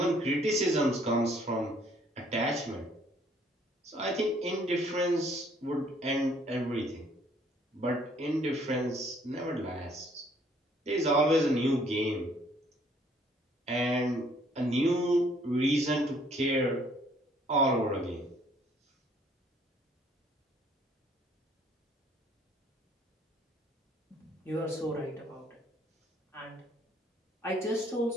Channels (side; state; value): both; normal; correlation 0.62